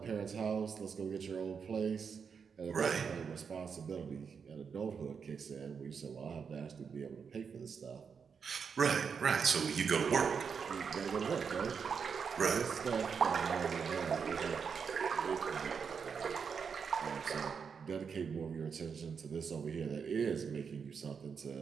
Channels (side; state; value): left; quieter; 6.2 dB